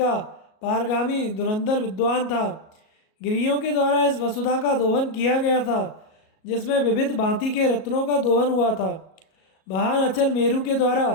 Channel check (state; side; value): late; right; 37 ms